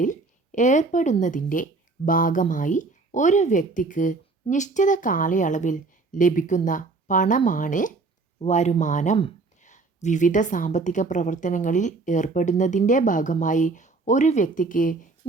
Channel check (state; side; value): quieter; left; 3.8 dB